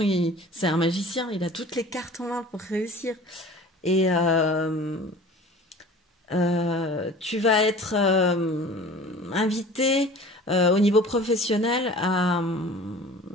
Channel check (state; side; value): normal; both; correlation 0.43